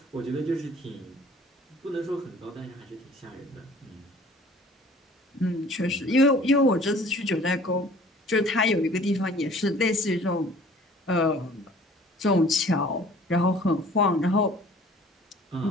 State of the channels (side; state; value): both; normal; correlation 0.50